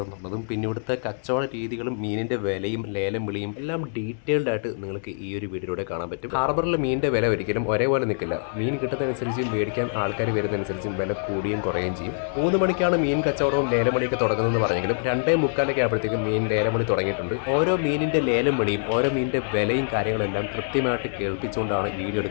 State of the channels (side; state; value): right; silent; digital silence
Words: എന്നുള്ളതും പിന്നെ ഇവിടുത്തെ കച്ചവട രീതികളും മീനിൻ്റെ വിലയും ലേലം വിളിയും എല്ലാം ഡീറ്റെയിൽഡ് ആയിട്ട് നിങ്ങൾക്ക് ഈ ഒരു വീഡിയോയിലൂടെ കാണാൻ പറ്റും. ഹാർബറിലെ മീനിൻ്റെ വില ഒരിക്കലും ഒരേപോലെ നിൽക്കില്ല. മീൻ കിട്ടുന്നതനുസരിച്ച് മേടിക്കാൻ ആൾക്കാർ വരുന്നതനുസരിച്ചും വില കൂടുകയും കുറയുകയും ചെയ്യും. 3 മണിക്കാണ് മീൻ കച്ചവടവും ലേലം വിളിയൊക്കെ തുടങ്ങുന്നതെന്ന് പറഞ്ഞെങ്കിലും 2:45 ആയപ്പോഴത്തേക്കും മീൻ ലേലം വിളി തുടങ്ങിയിട്ടുണ്ട്. ഓരോ മീനിൻ്റെ ലേലം വിളിയും ഓരോ മീനിൻ്റെ വിലയും കാര്യങ്ങളെല്ലാം കൃത്യമായിട്ട് കേൾപ്പിച്ചുകൊണ്ടാണ് വീഡിയോ